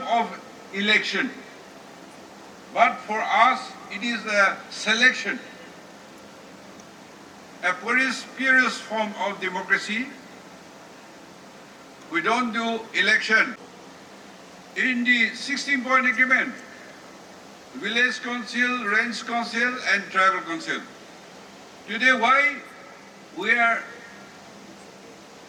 of election. But for us, it is a selection, a purest form of democracy. We don't do election. In the 16-point agreement, village council, range council and tribal council. Today, why we are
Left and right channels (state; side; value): identical; both; correlation 1.00